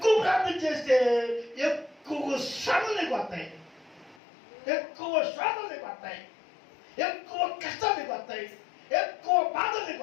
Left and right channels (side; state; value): right; drops out; at 4.2 s